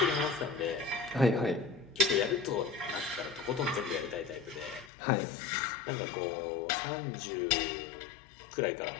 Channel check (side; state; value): right; drops out; at 4.9 s